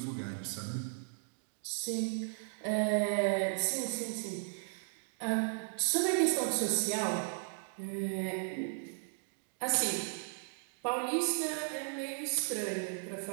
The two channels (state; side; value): silent; left; digital silence